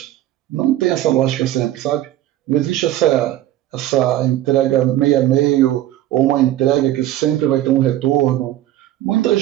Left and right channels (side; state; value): left; quieter; 13.7 dB